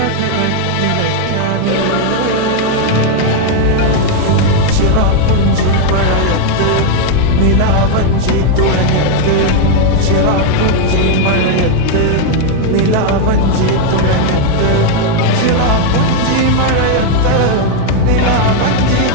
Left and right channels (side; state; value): both; different; correlation 0.00